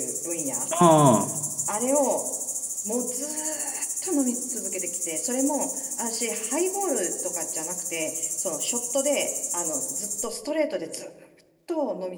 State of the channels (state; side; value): identical; both; correlation 1.00